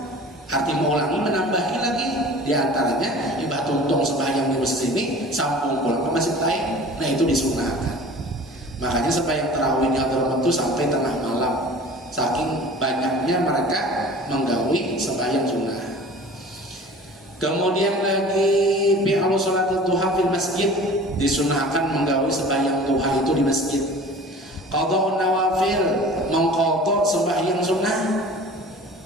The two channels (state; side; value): normal; both; correlation 0.42